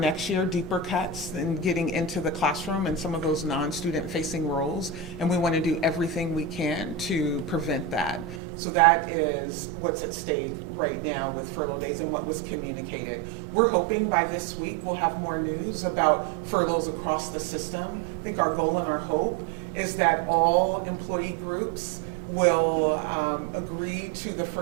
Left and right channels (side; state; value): left; drops out; at 8.4 s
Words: year, deeper cuts and getting into the classroom and some of those non-student facing roles. And we want to do everything we can to prevent that. So that is what's at stake right now with furlough days and what was communicated. We're hoping by this week we'll have more news about furloughs across the system. I think our goal and our hope is that all employee groups will agree to the